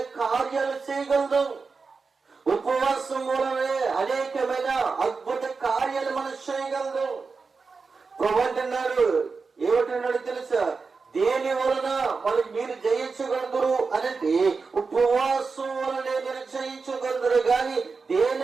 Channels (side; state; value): left; quieter; 4.6 dB